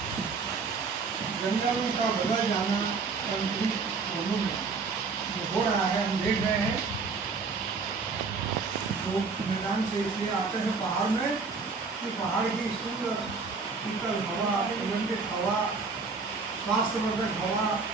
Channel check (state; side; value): quieter; left; 4.6 dB